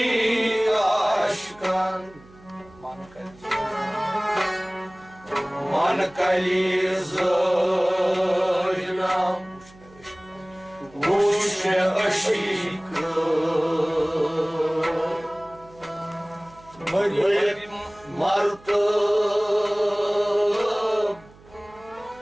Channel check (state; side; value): noise; right; hum, 25 dB below the sound